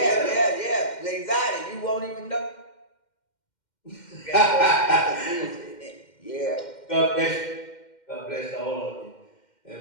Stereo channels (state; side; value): late; right; 2.1 ms